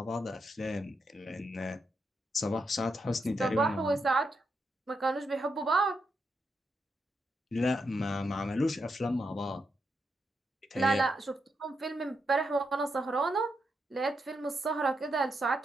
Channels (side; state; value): both; normal; correlation 0.83